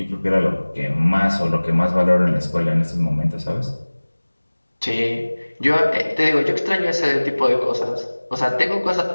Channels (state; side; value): inverted; both; correlation -1.00